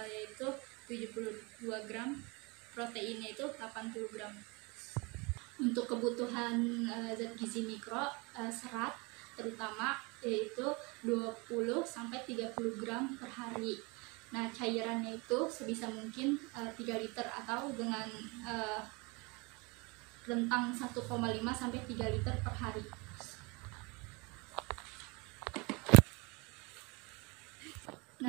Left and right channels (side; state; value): left; quieter; 28.0 dB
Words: yaitu 72 gram. Proteinnya itu 80 gram. Untuk kebutuhan zat gizi mikro, serat terutama yaitu 20 sampai 30 gram per hari. Nah, cairannya itu sebisa mungkin 3 liter atau dengan rentang 1,5 sampai 3 liter per hari.